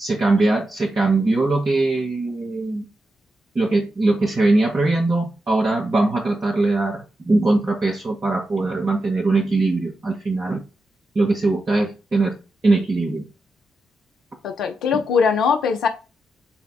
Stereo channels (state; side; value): normal; both; correlation 0.88